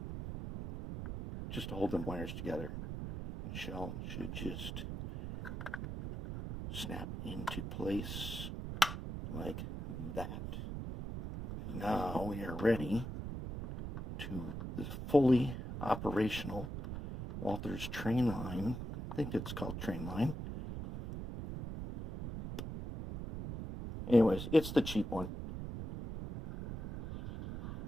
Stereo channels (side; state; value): right; noise; rumble, 6 dB below the sound